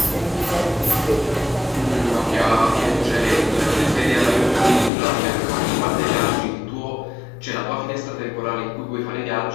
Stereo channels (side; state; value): right; drops out; at 4.9 s